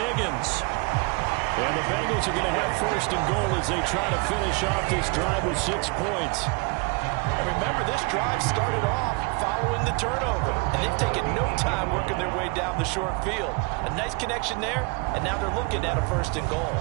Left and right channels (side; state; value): left; quieter; 29.9 dB